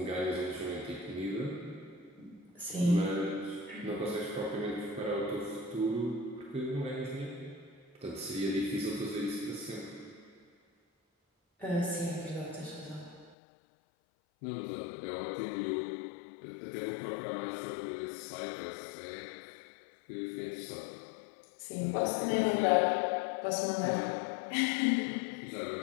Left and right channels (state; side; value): drops out; right; at 13.4 s